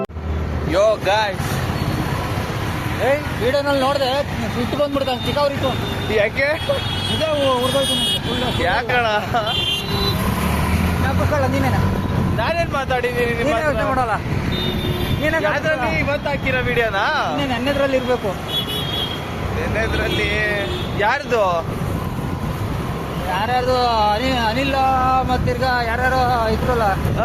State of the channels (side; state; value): both; identical; correlation 1.00